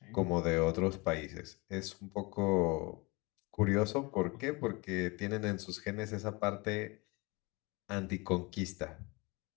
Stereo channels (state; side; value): quieter; right; 26.6 dB